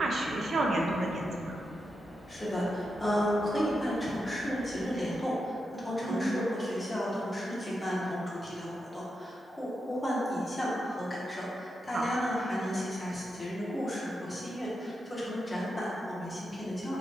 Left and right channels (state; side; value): normal; both; correlation 0.86